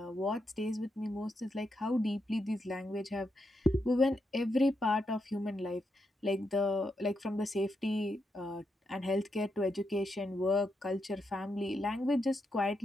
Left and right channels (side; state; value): both; normal; correlation 0.83